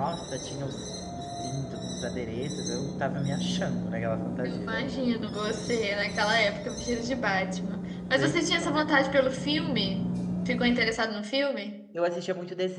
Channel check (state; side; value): identical; both; correlation 1.00